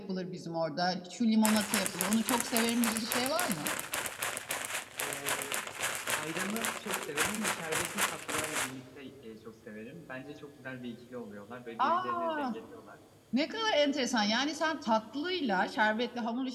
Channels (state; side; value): identical; both; correlation 1.00